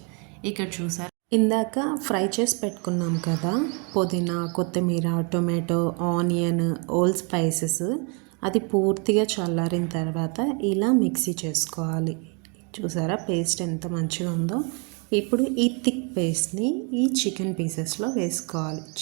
ఇక్కడ చూసారా, ఇందాక ఫ్రై చేసి పెట్టుకున్నాం కదా పుదీనా కొత్తిమీర టొమాటో ఆనియన్ ఓల్ స్పైసెస్, అది పూర్తిగా చల్లారిన తర్వాత ఇలా మిక్సీ చేసుకోవాలి. చూసారా పేస్ట్ ఎంత మంచిగా ఉందో. ఇప్పుడు ఈ థిక్ పేస్ట్ని ఈ చికెన్ పీసెస్లో వేసుకోవాలి.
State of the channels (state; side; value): quieter; left; 35.2 dB